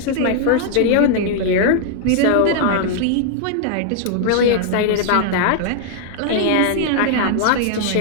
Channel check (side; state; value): both; different; correlation 0.00